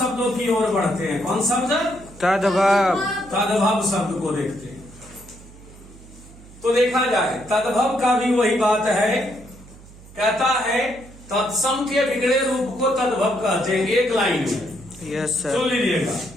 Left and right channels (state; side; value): noise; right; hum, 21 dB below the sound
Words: की ओर बढ़ते हैं। कौन शब्द? तद्भव। तद्भव शब्द को देखते हैं। तो देखा जाए, तद्भव का भी वही बात है, कहता है तत्सम के बिगड़े रूप को तद्भव कहते हैं। एक लाइन में यस सुन सर। लीजिएगा,